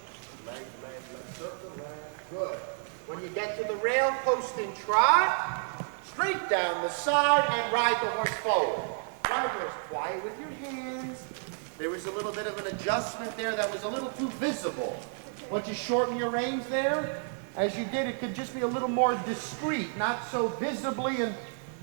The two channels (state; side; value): silent; left; 57 dB below the other